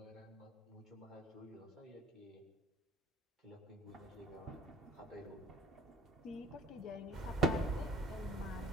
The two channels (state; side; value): normal; both; correlation 0.50